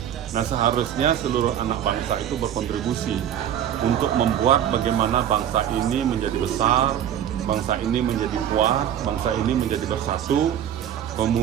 Nah, seharusnya seluruh anak bangsa itu berkontribusi untuk membuat bagaimana bangsa ini menjadi besar, bangsa ini menjadi kuat, bangsa ini menjadi bersatu.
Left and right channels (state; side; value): quieter; left; 10.1 dB